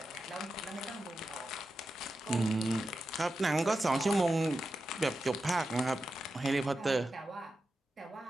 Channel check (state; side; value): normal; both; correlation 0.90